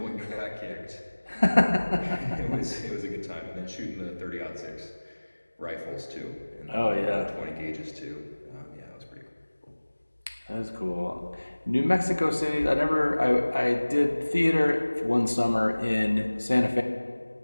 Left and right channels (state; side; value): inverted; both; correlation -1.00